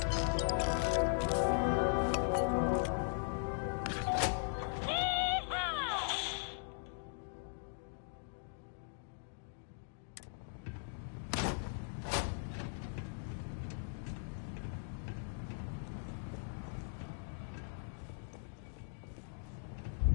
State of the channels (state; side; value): silent; right; digital silence